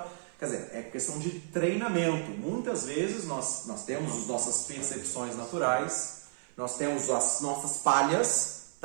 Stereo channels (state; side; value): silent; left; 55 dB below the other